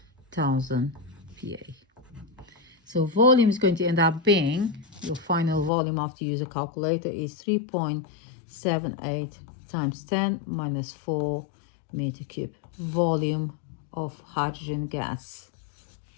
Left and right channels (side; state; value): right; drops out; at 5.7 s